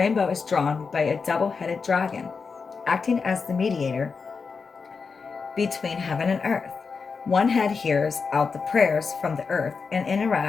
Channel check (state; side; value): quieter; right; 5.1 dB